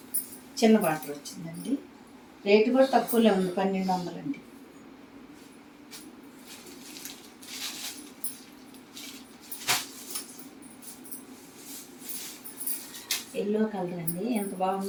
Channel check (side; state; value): both; identical; correlation 1.00